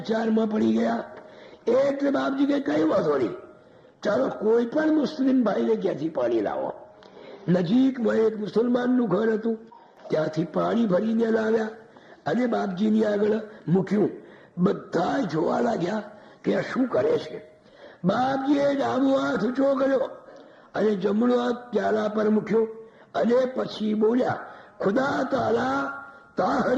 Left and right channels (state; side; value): identical; both; correlation 1.00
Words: પડી ગયા. એટલે બાપજી કે કઈ વાંધો નહીં, ચાલો કોઈ પણ મુસ્લિમ ભાઈને ક્યાંથી પાણી લાવો. નજીકમાં એક મુસલમાનનું ઘર હતું, ત્યાંથી પાણી ભરીને લાવ્યા અને બાપજીની આગળ મૂક્યું. બધા જોવા લાગ્યા કે આ શું કરે છે. બાપજીએ ડાબો હાથ ઊંચો કર્યો અને જમણો હાથ પ્યાલા પર મૂક્યો અને પછી બોલ્યા, ખુદા તાલા